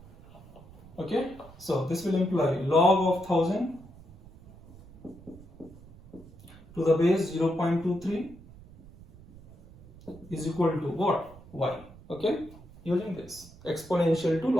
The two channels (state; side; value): noise; right; rumble, 21 dB below the sound